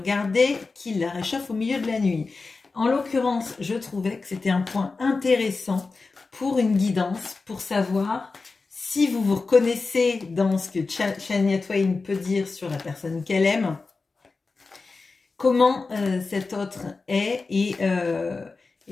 qui la réchauffe au milieu de la nuit. En l'occurrence, je trouvais que c'était un point intéressant pour une guidance, pour savoir si vous vous reconnaissez dans ce que Shania Twain peut dire sur la personne qu'elle aime, comment cet autre est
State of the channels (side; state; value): right; quieter; 4.0 dB